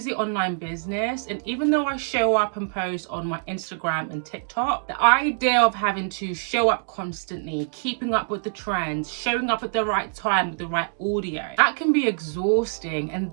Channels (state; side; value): silent; left; digital silence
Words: online business, and even though I show up and post on my Instagram and TikTok, the idea of having to show up constantly, keeping up with the trends, showing up at the right time with the right audio, that can be exhausting. And